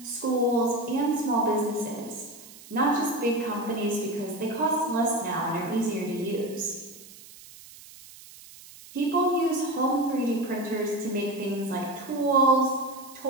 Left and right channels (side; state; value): right; noise; hiss, 19 dB below the sound